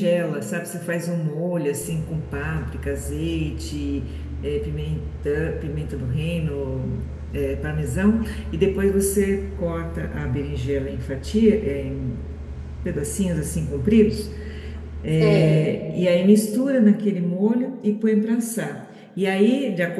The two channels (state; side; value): identical; both; correlation 1.00